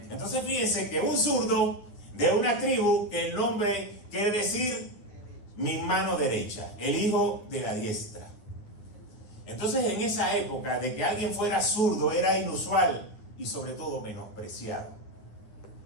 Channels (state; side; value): late; right; 9.5 ms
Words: Entonces fíjense que un zurdo de una tribu, que el nombre quiere decir mi mano derecha, el hijo de la diestra. Entonces en esa época de que alguien fuera zurdo era inusual y sobre todo menospreciado.